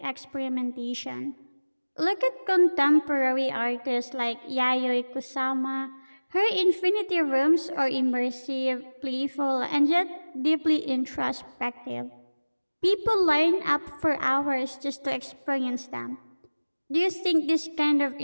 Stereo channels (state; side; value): inverted; both; correlation -1.00